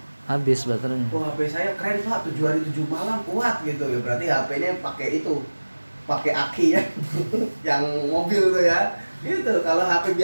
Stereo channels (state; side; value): inverted; both; correlation -1.00